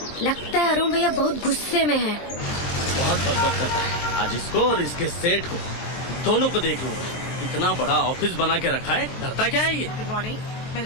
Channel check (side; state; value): right; late; 23 ms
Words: लगता है अरुण भैया बहुत गुस्से में हैं। बहुत बकबक करता है। आज इसको और इसके सेठ को दोनों को देख लूंगा। इतना बड़ा ऑफिस बना के रखा है, डरता क्या है ये? Good morning,